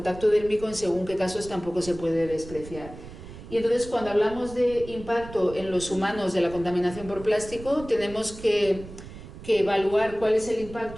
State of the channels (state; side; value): noise; right; rumble, 15 dB below the sound